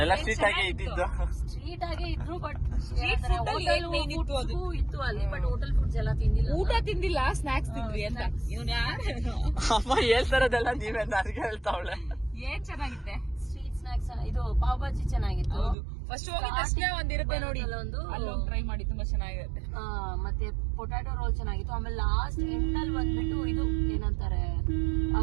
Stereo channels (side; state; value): left; drops out; at 15.8 s